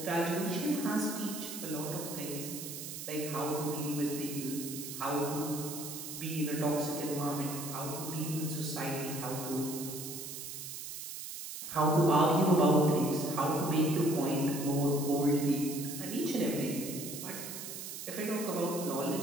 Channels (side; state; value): right; noise; hiss, 8 dB below the sound